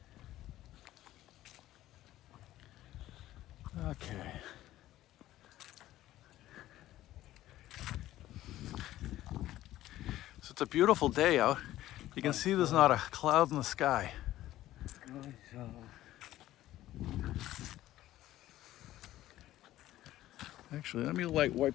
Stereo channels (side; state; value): right; quieter; 14.5 dB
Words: Okay. So it's a beautiful day out. You can see there's not a cloud in the sky. Actually, let me light